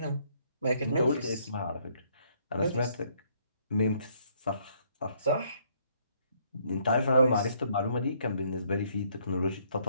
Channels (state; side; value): inverted; both; correlation -0.67